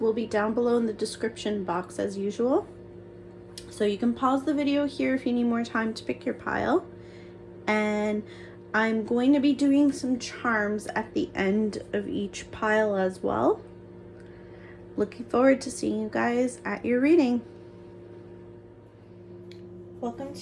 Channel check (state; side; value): identical; both; correlation 1.00